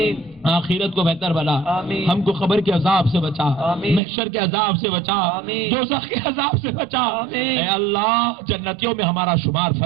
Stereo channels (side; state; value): left; drops out; at 4.0 s